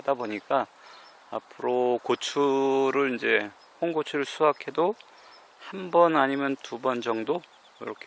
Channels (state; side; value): identical; both; correlation 1.00